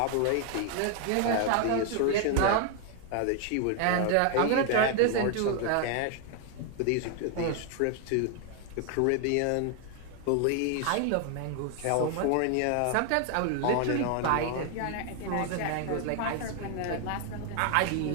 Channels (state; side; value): different; both; correlation 0.00